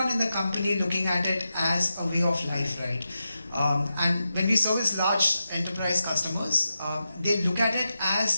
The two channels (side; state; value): both; inverted; correlation -0.90